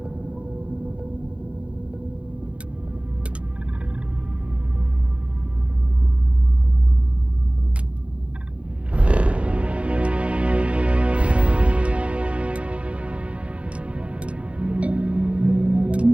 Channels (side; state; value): left; late; 0.061 ms